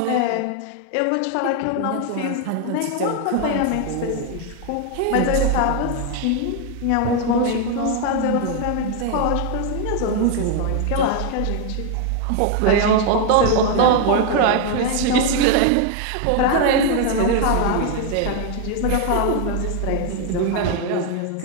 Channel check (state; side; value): different; both; correlation 0.01